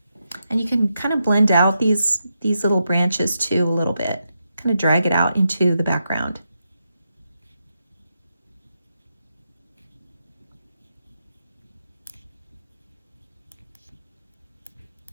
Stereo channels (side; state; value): both; inverted; correlation -0.85